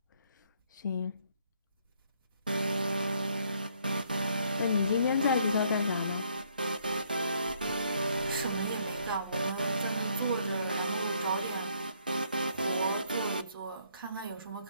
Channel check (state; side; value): inverted; both; correlation -0.67